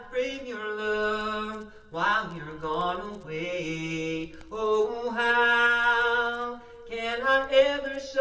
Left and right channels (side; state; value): both; identical; correlation 1.00